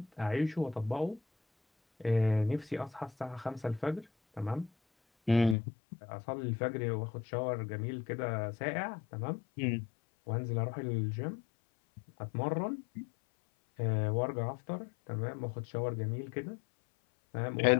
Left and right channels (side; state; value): right; drops out; at 5.6 s